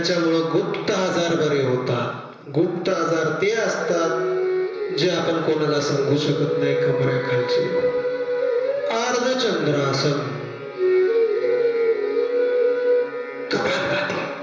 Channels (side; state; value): both; identical; correlation 1.00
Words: गुप्त आजार बरे होतात. गुप्त आजार ते असतात जे आपण कोणाला सांगू शकत नाही. कमरेखालचे अर्धचंद्रासन, कपालभाती.